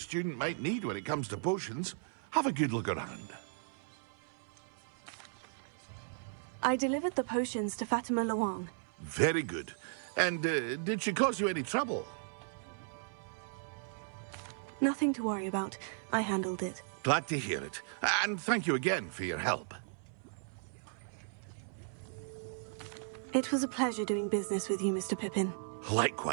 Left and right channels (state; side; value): silent; left; 54 dB below the other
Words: might need when it comes to potions. Have a good look around. I delivered the potions to Fatima Luang. Very good. And did she cause you any trouble? Nothing to worry about. I handled it. Glad to hear it. And thank you again for your help. It was a pleasure doing business with you, Mr. Pippin.